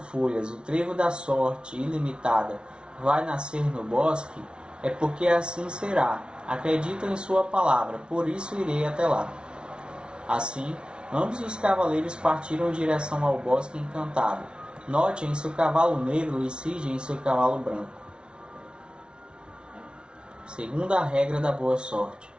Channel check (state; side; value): late; left; 0.056 ms